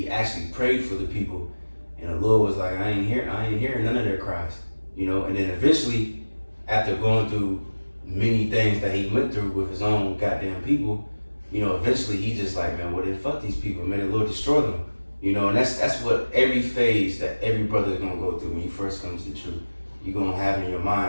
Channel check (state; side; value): inverted; both; correlation -1.00